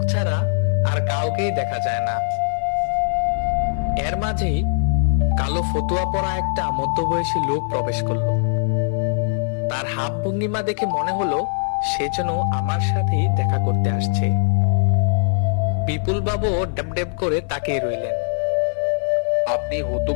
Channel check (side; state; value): right; silent; 55 dB below the other